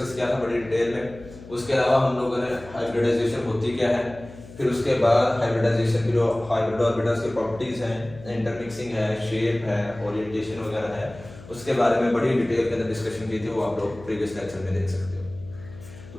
किया था बड़ी डिटेल में। उसके अलावा हम लोगों ने हाइब्रिडाइजेशन होती क्या है, फिर उसके बाद हाइब्रिडाइजेशन की जो हाइब्रिड ऑर्बिटल्स की प्रॉपर्टीज हैं, इंटरमिक्सिंग है, शेप है, ओरिएंटेशन वगैरह है, उसके बारे में बड़ी डिटेल के अंदर डिस्कशन की थी, वो आप लोग प्रीवियस लेक्चर में देख सकते हो। तो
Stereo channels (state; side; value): noise; left; hum, 18 dB below the sound